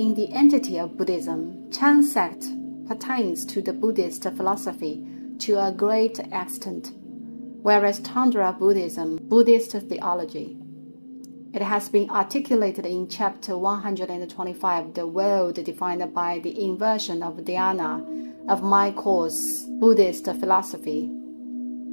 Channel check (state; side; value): inverted; both; correlation -1.00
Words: the entity of Buddhism, Chan sect pertains to the Buddhist philosophy to a great extent, whereas Tantra Buddhism, Buddhist theology. It has been articulated in chapter 125, the world defined by the inversion of dhyana, of my course, Buddhist philosophy,